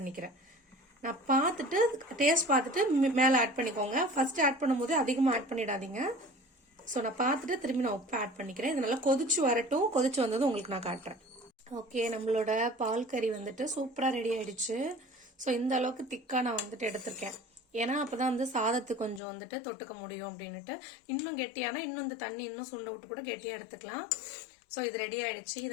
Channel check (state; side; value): drops out; right; at 19.2 s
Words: நான் பார்த்துட்டு டேஸ்ட் பார்த்துட்டு மேல ஆட் பண்ணிக்கோங்க. ஃபர்ஸ்ட் ஆட் பண்ணும்போது அதிகமா ஆட் பண்ணிடாதீங்க. ஸோ நான் பார்த்துட்டு திரும்பி நான் உப்பு ஆட் பண்ணிக்கிறேன். இது நல்லா கொதிச்சு வரட்டும். கொதிச்சு வந்தது உங்களுக்கு நான் காட்டுறேன். ஓகே, நம்மளோட பால் கறி வந்துட்டு சூப்பரா ரெடி ஆயிடுச்சு. ஸோ இந்த அளவுக்கு திக்கா நான் வந்துட்டு எடுத்திருக்கேன். ஏன்னா அப்பதான் வந்து சாதத்துக்கு கொஞ்சம் வந்துட்டு தொட்டுக்க முடியும் அப்படின்னுட்டு. இன்னும் கெட்டியானா இன்னும் இந்த தண்ணி இன்னும் சுண்ட விட்டு கூட கெட்டியா எடுத்துக்கலாம். ஸோ இது ரெடி ஆயிடுச்சு. இது